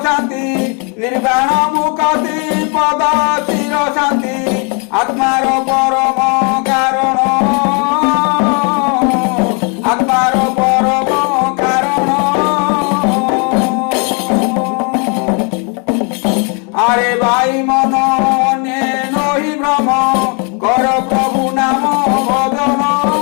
শান্তি নির্বাণ মুক্তি পদ চির শান্তি আত্মার পরম কারণ আত্মার পরম কারণ আরে ভাই মন নহি ভ্রম কর প্রভু নাম ভজন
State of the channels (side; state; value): right; quieter; 35.7 dB